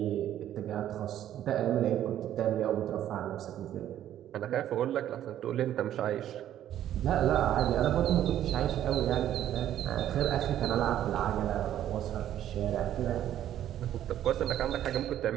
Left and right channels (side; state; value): left; quieter; 11.6 dB